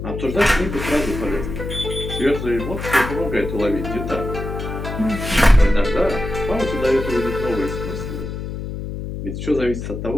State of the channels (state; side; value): noise; left; hum, 6 dB below the sound